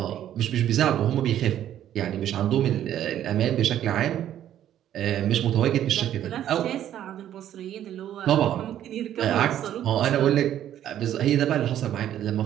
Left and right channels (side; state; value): left; quieter; 11.3 dB